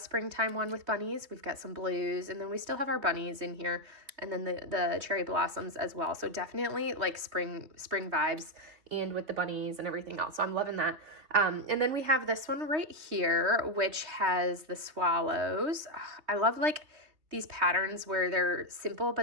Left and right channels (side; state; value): left; late; 3.2 ms